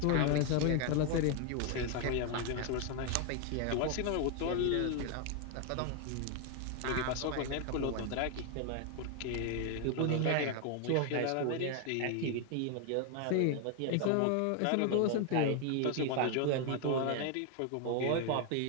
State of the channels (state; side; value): different; both; correlation 0.01